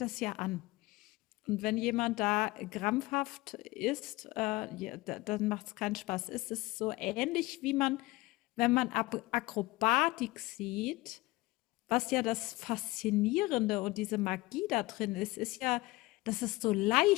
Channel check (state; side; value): quieter; right; 20.8 dB